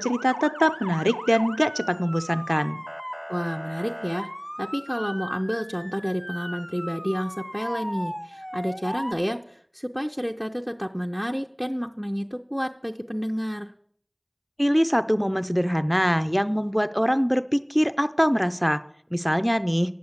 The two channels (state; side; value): identical; both; correlation 1.00